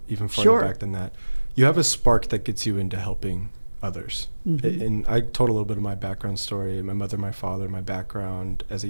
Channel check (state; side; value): inverted; both; correlation -1.00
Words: even farther back than that. You have a spark that gets you into helping others. And I told a little bit of my background story, my mother, my father, my background as a